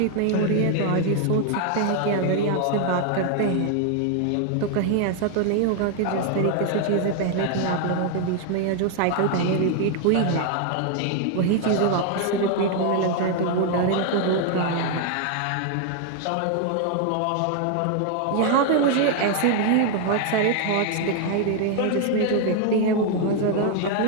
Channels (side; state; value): both; different; correlation 0.00